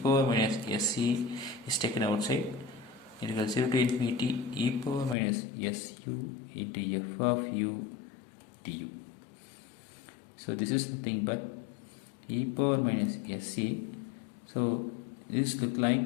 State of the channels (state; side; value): drops out; right; at 5.2 s